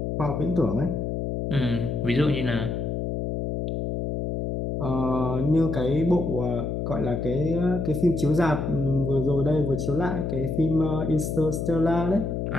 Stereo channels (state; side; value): noise; left; hum, 2 dB below the sound